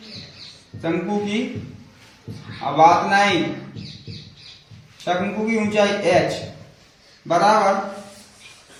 शंकु की बात नहीं, शंकु की ऊंचाई h बराबर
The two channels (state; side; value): identical; both; correlation 1.00